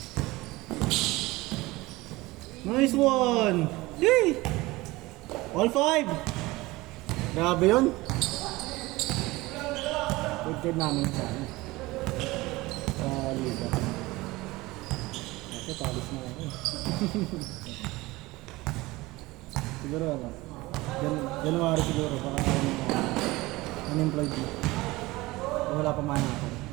Nice one! Yay! All 5! Grabe yun! Good card namin sa ano. Sa liga. Kasi palis na ako. Siguro ano. January siguro. Baka unemployed na. Wala pa man ako.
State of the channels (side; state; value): left; quieter; 20.6 dB